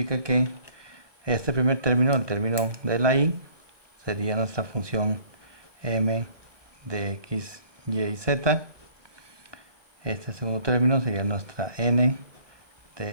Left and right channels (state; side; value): late; left; 1.2 ms